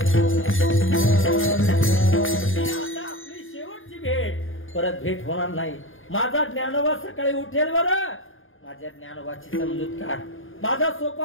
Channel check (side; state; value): right; late; 0.59 ms